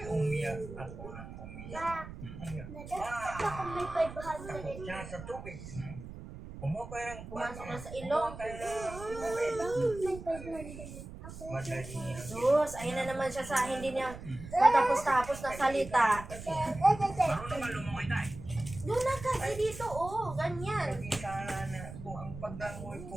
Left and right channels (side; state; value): right; noise; rumble, 12 dB below the sound